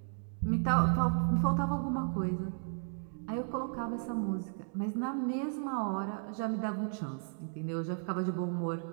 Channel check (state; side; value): silent; left; digital silence